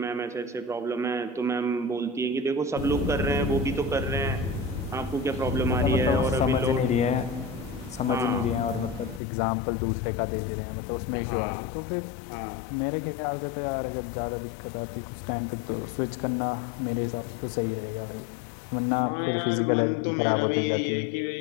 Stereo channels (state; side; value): drops out; right; at 9.2 s